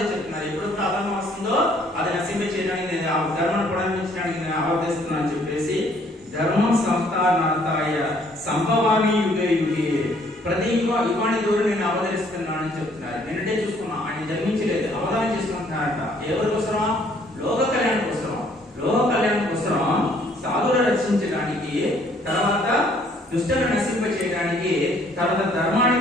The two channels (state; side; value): normal; both; correlation 0.63